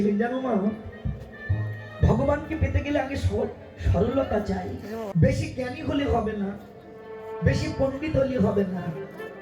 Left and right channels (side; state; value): both; identical; correlation 1.00